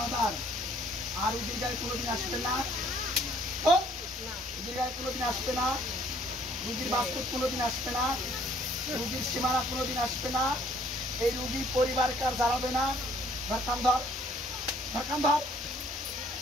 মাদার। আর রুগীর গায়ে কোনোদিন আসবে না? রুগীর গায়ে কোনোদিন আসবে না? রুগীর বাস্তব কোনোদিন আসবে না? রুগীর সীমানা কোনোদিন আসবে না? এই রুগী পরিবারকে আর জ্বালাবে না? ধর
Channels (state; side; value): normal; both; correlation 0.61